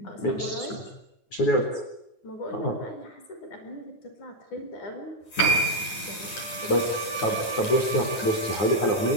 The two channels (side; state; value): right; late; 9.7 ms